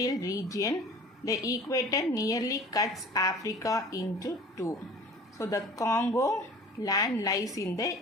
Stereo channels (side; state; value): both; normal; correlation 0.44